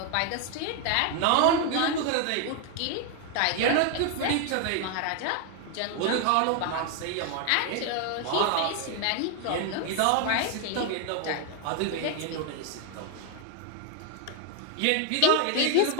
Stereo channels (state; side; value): different; both; correlation 0.00